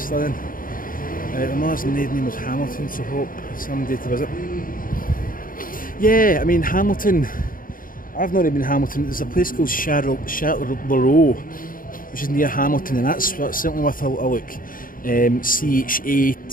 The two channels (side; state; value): right; late; 0.40 ms